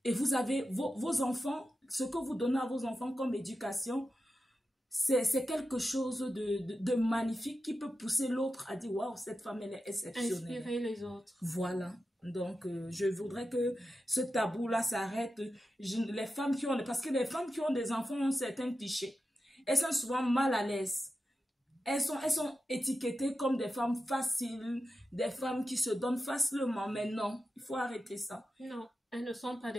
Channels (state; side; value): normal; both; correlation 0.91